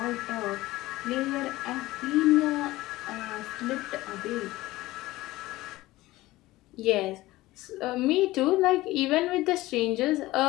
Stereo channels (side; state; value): right; quieter; 18.0 dB